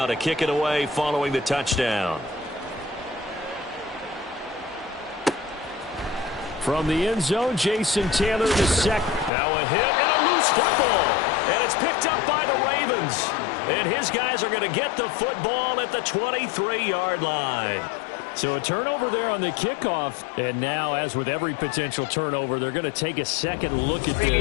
to kick it away following the touchdown. From the end zone, Jason Taylor to second. Now a hit and a loose football. And it's picked up by the Ravens. And his guys are going to get the football at the 23-yard line. So a turnover there on the kickoff. And now, as with every potential turnover, they're going to take a second look at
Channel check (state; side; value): drops out; right; at 9.3 s